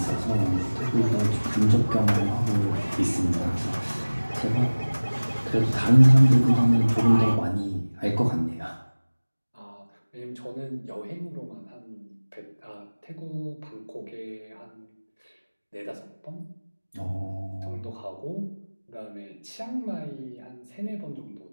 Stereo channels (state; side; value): inverted; both; correlation -1.00